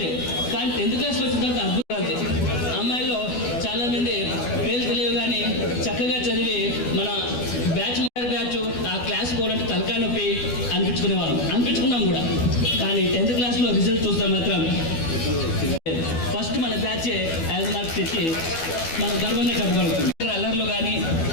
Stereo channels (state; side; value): late; right; 12 ms